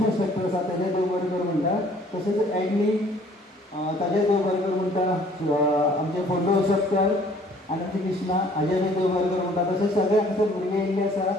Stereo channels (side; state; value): both; normal; correlation 0.57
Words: इंस्ट्रक्टर आसा तेजे देव बरें करूं म्हणटा. तशेंच एडनी ताजे देव बरें करूं म्हणटा. आमचे फोटो इंस्ट्रक्टर आनंद कृष्णा हाजे बी देव बरें करूं म्हणटा. तशेंच सगळे हांगसर भुरगे येयल्ले